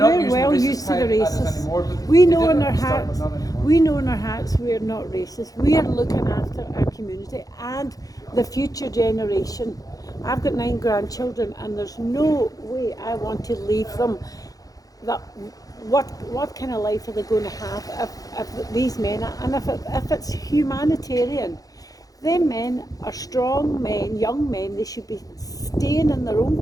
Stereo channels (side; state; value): right; late; 0.17 ms